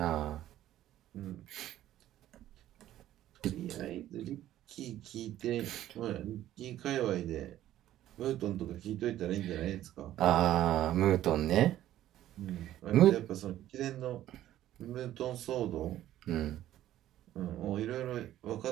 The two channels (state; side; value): quieter; left; 13.1 dB